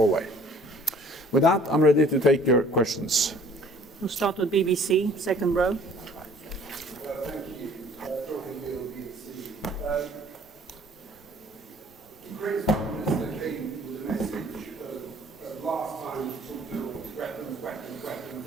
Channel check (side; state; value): both; normal; correlation 0.54